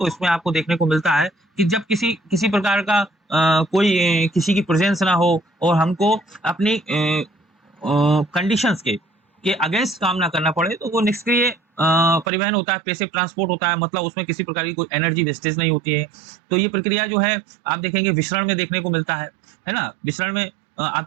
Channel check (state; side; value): drops out; left; at 12.2 s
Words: इसमें आपको देखने को मिलता है कि जब किसी प्रकार का कोई किसी की प्रेजेंस ना हो और हमको अपनी कंडीशंस के अगेंस्ट काम ना करना पड़े, तो वो निष्क्रिय परिवहन होता है, पैसिव ट्रांसपोर्ट होता है। मतलब उसमें किसी प्रकार की कोई एनर्जी वेस्टेज नहीं होती है। तो ये प्रक्रिया जो है आप देखेंगे विसरण में देखने को मिलता है ना। विसरण में आप